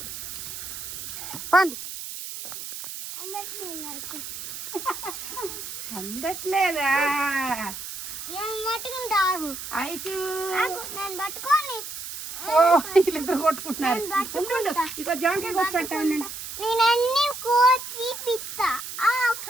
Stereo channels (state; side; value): noise; right; hiss, 8 dB below the sound